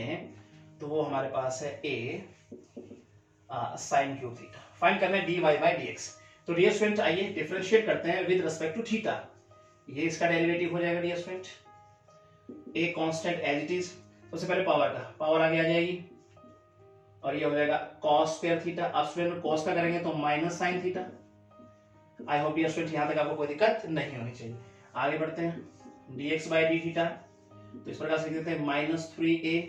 तो वो हमारे पास है a sin cube theta. Find करना है dy बाई dx। तो डियर स्टूडेंट आइए डिफरेंशिएट करते हैं विद रिस्पेक्ट टू थीटा। ये इसका डेरिवेटिव हो जाएगा dear student, a constant as it is, सबसे पहले पावर का पावर आगे आ जाएगी, और ये हो जाएगा cos स्क्वायर थीटा। अब स्टूडेंट cos का करेंगे तो minus sin theta. I hope dear student यहाँ तक आपको कोई दिक्कत नहीं होनी चाहिए। आगे बढ़ते हैं dx बाई डी थीटा, तो इस प्रकार से लिख देते हैं -3a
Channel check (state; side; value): identical; both; correlation 1.00